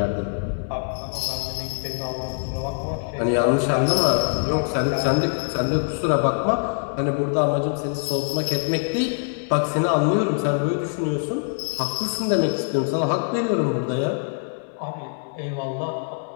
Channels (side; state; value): right; silent; digital silence